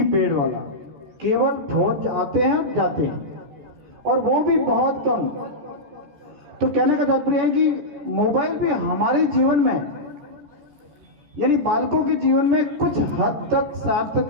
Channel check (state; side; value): late; left; 14 ms